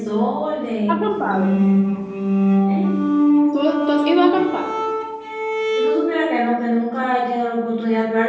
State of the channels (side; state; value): both; identical; correlation 1.00